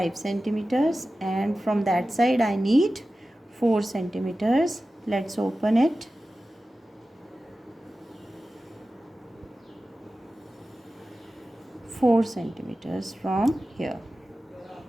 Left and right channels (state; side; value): normal; both; correlation 0.95